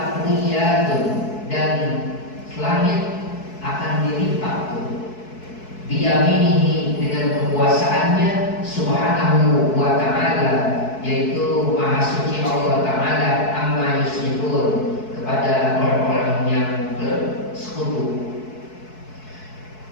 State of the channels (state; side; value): late; right; 4.6 ms